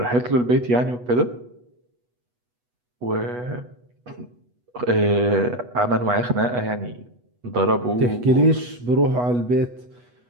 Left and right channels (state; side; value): late; left; 8.2 ms